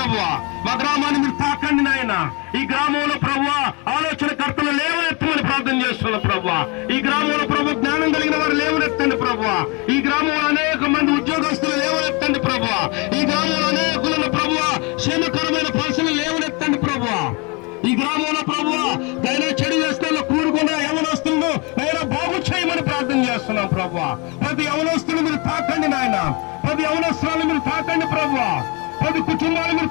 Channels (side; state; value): right; quieter; 29.7 dB